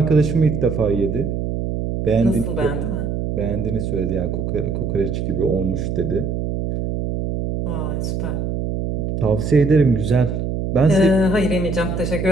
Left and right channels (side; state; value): right; noise; hum, 2 dB below the sound